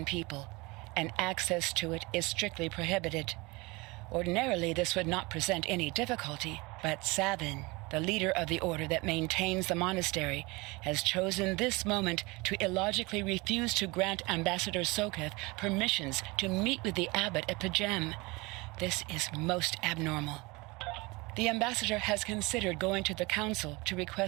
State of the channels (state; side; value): quieter; left; 24.6 dB